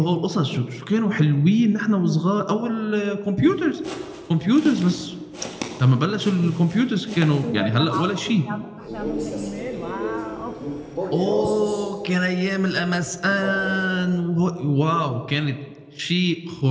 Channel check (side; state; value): both; identical; correlation 1.00